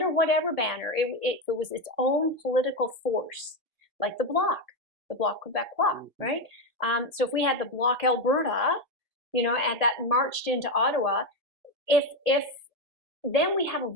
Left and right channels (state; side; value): late; left; 1.6 ms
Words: whatever banner, it was its own political force, like the Bloc Quebecois, right? So if we had the Bloc Alberta, you know, and that marched into Ottawa, if then we have a